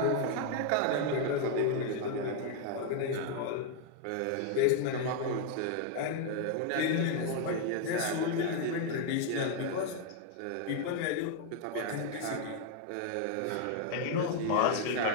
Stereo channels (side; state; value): both; different; correlation 0.00